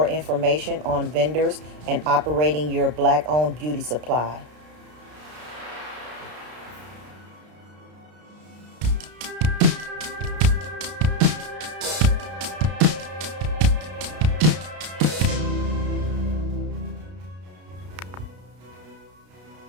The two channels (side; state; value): left; late; 33 ms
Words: information on vendors and operating your Black-owned beauty supply.